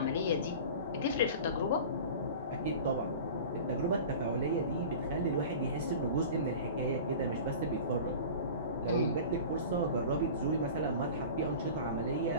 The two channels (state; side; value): inverted; both; correlation -0.37